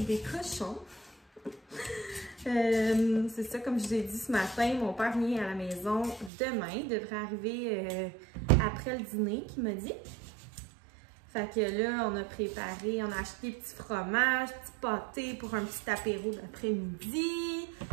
des cochons. C'est ça, comme je vous ai dit ce matin, mon père vient à la maison demain. Il devrait arriver après le dîner, qu'il m'a dit. Fait que là, on a préparé, on a acheté des petits fromages, petits pâtés pour un petit apéro d'après-midi.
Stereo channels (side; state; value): left; drops out; at 6.3 s